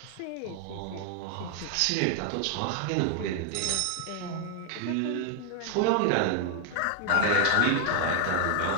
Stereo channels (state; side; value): different; both; correlation 0.00